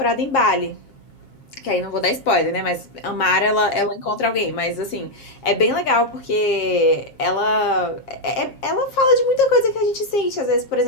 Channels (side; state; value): right; late; 7.4 ms